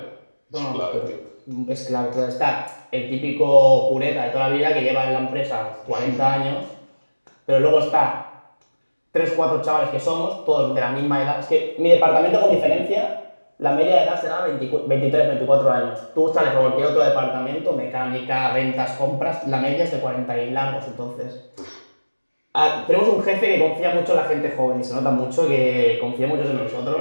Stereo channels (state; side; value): inverted; both; correlation -1.00